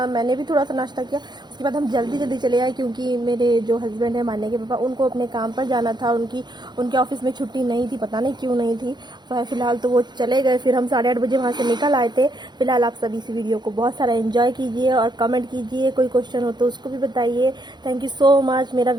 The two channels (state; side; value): late; left; 0.21 ms